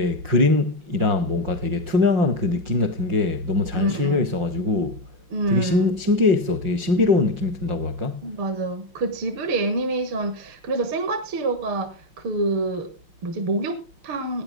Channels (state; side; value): late; left; 5.6 ms